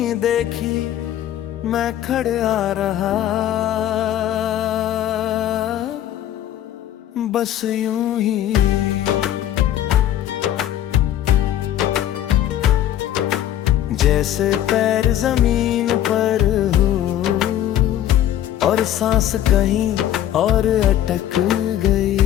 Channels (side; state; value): right; quieter; 11.8 dB